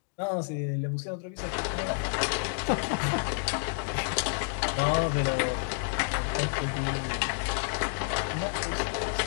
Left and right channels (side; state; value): right; silent; digital silence